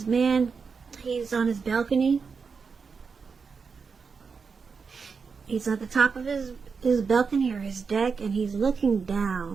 man, he's on his balcony. He's at the top of his balcony or his deck, and he's looking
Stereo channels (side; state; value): left; quieter; 5.4 dB